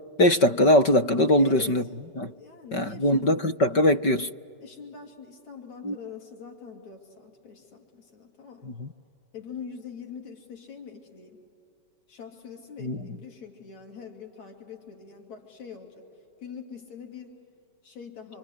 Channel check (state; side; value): late; right; 5.2 ms